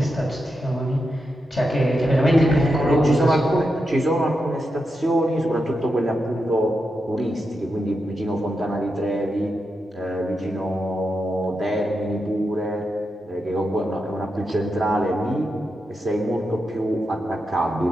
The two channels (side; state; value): both; normal; correlation 0.87